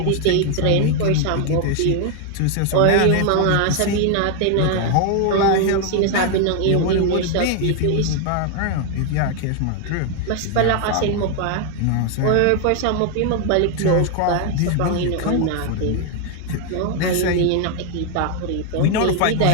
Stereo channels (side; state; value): both; different; correlation 0.01